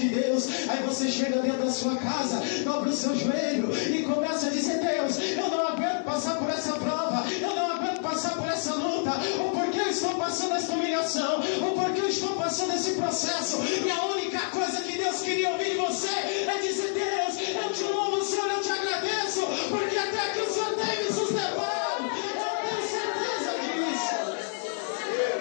Deus. Aí você chega dentro da sua casa, dobra o seu joelho e começa a dizer: Deus, eu não aguento passar por essa prova, eu não aguento passar por essa luta, ou porque eu estou passando essa humilhação, ou porque eu estou passando esse processo. E a única coisa que Deus queria ouvir de você é dizer: Deus, eu te louvo, Senhor, eu te agradeço, porque até aqui o Senhor tem me sustentado. Eu tenho certeza disso.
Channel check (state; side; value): silent; right; 59 dB below the other